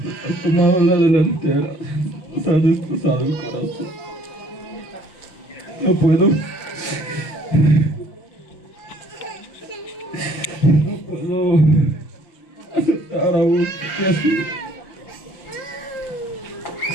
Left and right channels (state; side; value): late; right; 5.6 ms